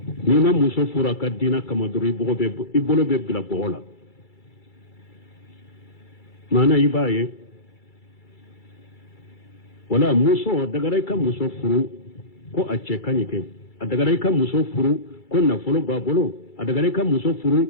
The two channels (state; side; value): late; right; 2.3 ms